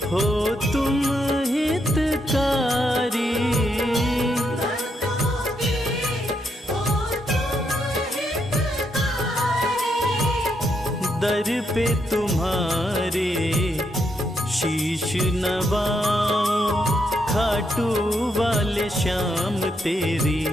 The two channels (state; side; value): normal; both; correlation 0.79